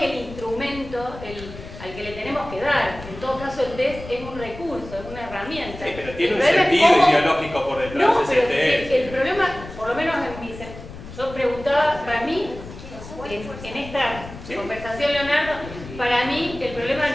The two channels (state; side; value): noise; left; rumble, 14 dB below the sound